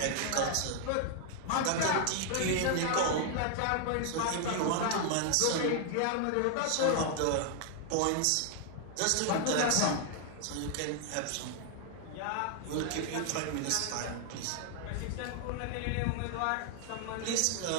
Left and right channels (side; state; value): both; different; correlation 0.00